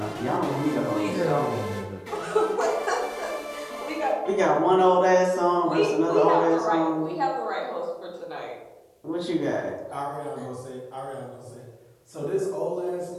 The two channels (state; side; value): identical; both; correlation 1.00